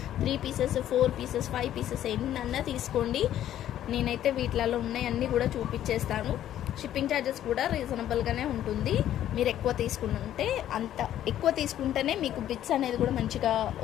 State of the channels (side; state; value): right; quieter; 11.8 dB